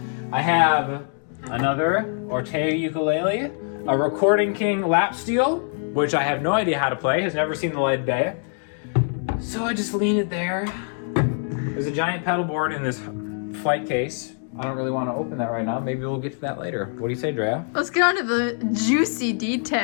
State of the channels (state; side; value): silent; right; 61 dB below the other